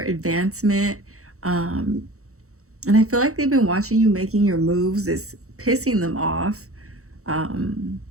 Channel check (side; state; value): left; late; 0.64 ms